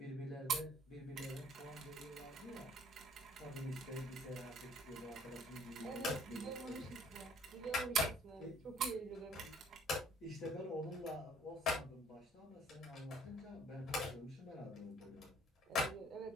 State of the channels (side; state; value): both; normal; correlation 0.58